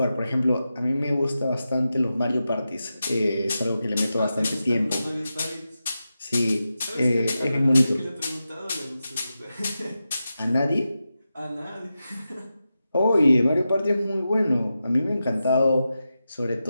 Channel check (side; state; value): both; inverted; correlation -0.91